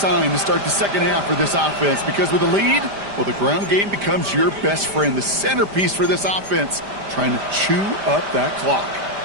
to start the second half for this offense, because with a lead, well, the ground game becomes your best friend, the centerpiece for this offense, trying to chew up that clock.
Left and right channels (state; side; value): late; left; 5.0 ms